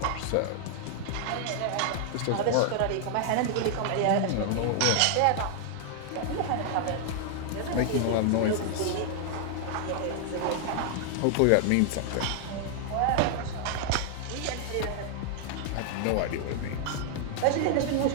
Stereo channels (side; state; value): both; different; correlation 0.00